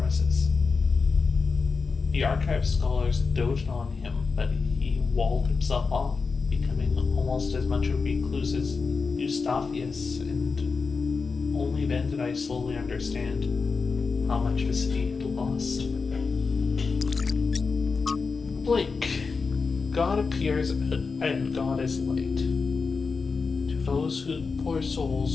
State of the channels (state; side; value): quieter; right; 4.7 dB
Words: The archive scholars doted on him, but he walled himself off, becoming almost as much a recluse as Eustathius, and only then did I slowly understand how much the city had lost. Blink. God appears and God is light to those poor